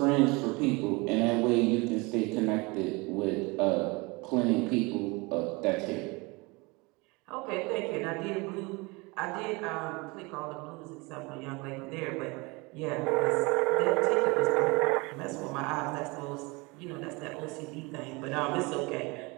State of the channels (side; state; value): left; quieter; 26.0 dB